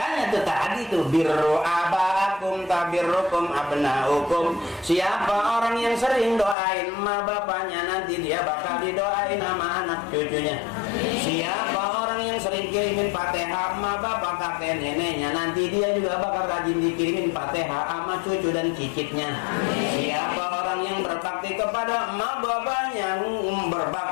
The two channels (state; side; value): drops out; right; at 6.6 s